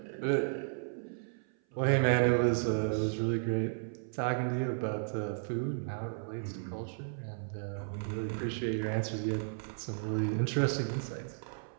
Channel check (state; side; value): silent; left; 55 dB below the other